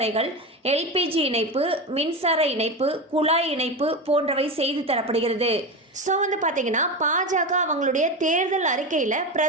எல்பிஜி இணைப்பு, மின்சார இணைப்பு, குழாய் இணைப்பு போன்றவை செய்து தரப்படுகிறது. ஸோ பார்த்தீங்கன்னா பாஜக அவங்களுடைய தேர்தல் அறிக்கையில்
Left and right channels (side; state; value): both; normal; correlation 0.20